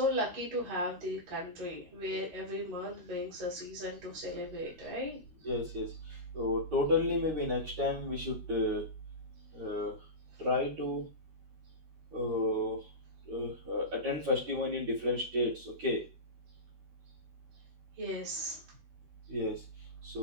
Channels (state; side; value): late; left; 13 ms